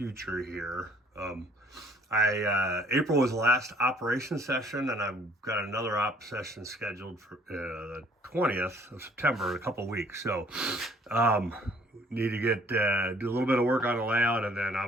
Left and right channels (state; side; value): normal; both; correlation 0.58